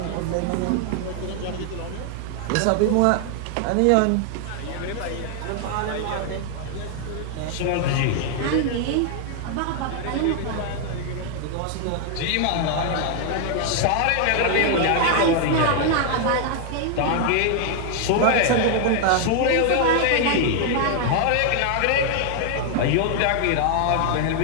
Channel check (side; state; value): both; different; correlation 0.00